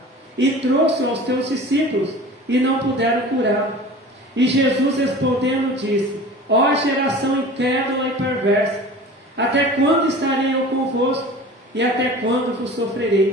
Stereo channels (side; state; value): both; normal; correlation 0.39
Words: E trouxe aos teus discípulos e não puderam curá-lo. E Jesus respondendo disse: Ó geração incrédula e perversa, até quando estarei eu convosco e até quando vos